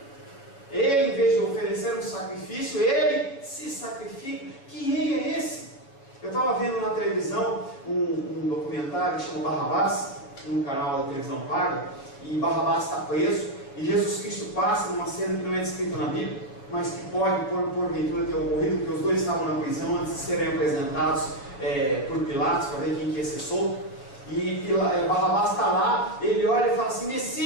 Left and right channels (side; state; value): right; late; 7.2 ms